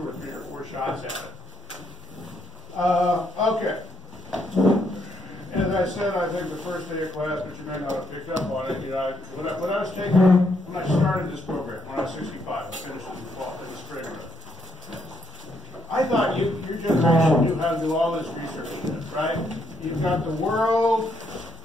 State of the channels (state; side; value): normal; both; correlation 0.74